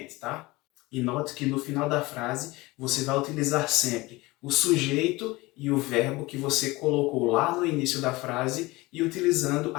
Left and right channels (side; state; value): right; quieter; 21.5 dB